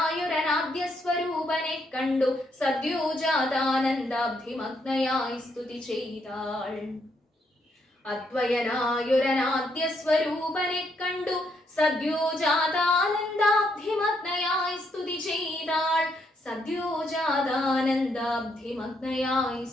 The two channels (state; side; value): normal; both; correlation 0.75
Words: സ്വരൂപനെ കണ്ടു സദ്യോജാതാനന്ദാബ്ധിമഗ്നയായി സ്തുതി ചെയ്താൾ. അദ്വയനായൊരനാദ്യ സ്വരൂപനെ കണ്ടു സദ്യോജാതാനന്ദാബ്ധിമഗ്നയായി സ്തുതി ചെയ്താൾ. സദ്യോജാതാനന്ദാബ്ധിമഗ്നയായി